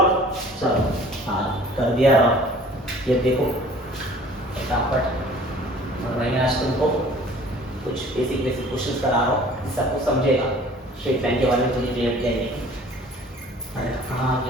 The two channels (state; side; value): normal; both; correlation 0.50